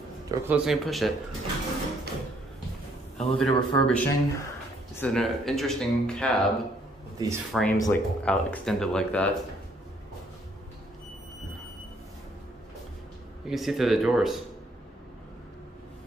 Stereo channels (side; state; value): both; normal; correlation 0.67